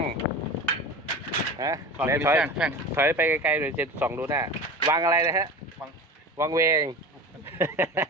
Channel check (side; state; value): both; normal; correlation 0.32